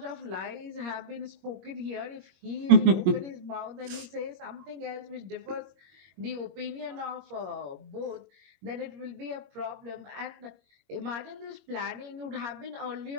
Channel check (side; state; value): left; late; 21 ms